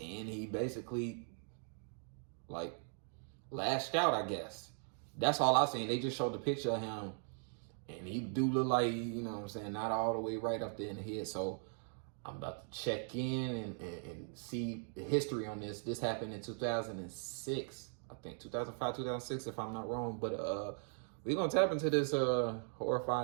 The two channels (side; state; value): left; silent; 52 dB below the other